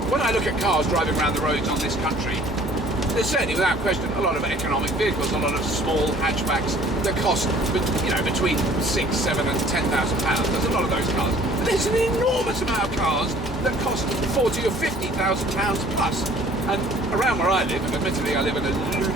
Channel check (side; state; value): both; normal; correlation 0.53